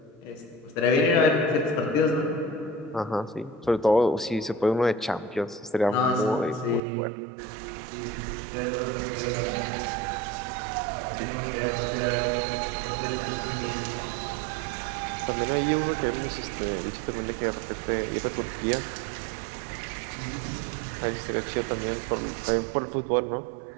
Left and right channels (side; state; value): left; drops out; at 6.8 s